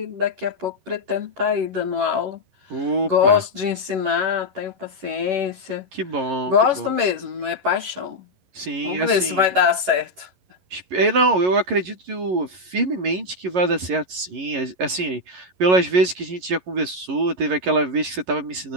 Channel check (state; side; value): late; left; 11 ms